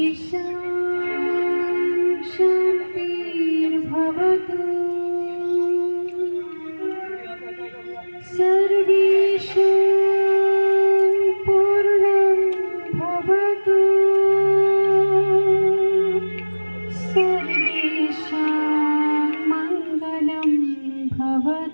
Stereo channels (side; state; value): both; inverted; correlation -1.00